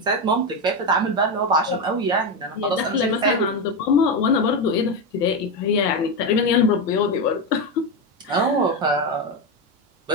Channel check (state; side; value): normal; both; correlation 0.12